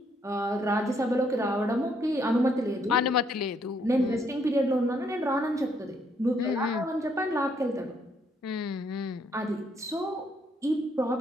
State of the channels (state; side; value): normal; both; correlation 0.71